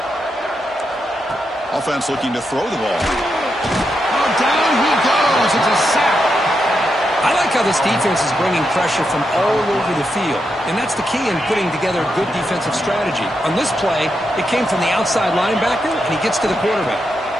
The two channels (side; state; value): both; normal; correlation 0.84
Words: Offense looking to throw the ball. Oh, down he goes. It's a sack. I like how this defense is bringing pressure from all over the field, and that's the key in putting together a good defensive strategy. On this play, it came from the outside linebacker, and he gets to the quarterback.